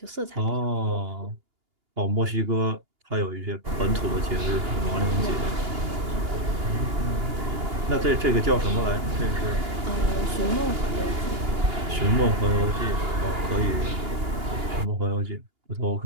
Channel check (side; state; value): left; late; 2.8 ms